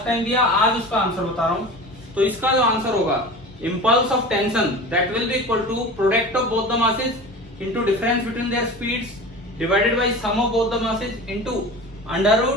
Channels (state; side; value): normal; both; correlation 0.34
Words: टाइम दिया, आज उसका आंसर बता रहा हूं। तो इसका जो आंसर होगा, impulse of tension that will be equal to product of both the masses into difference between their speeds divided by sum of both the masses into under